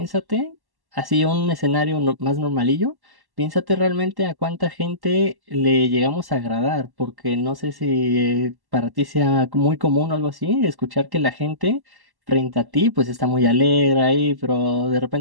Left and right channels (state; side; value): late; left; 1.1 ms